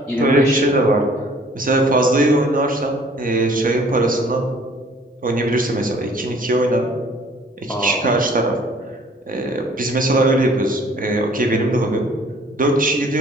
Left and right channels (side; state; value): both; normal; correlation 0.55